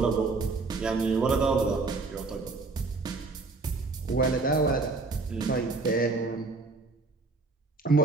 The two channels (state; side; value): quieter; left; 3.8 dB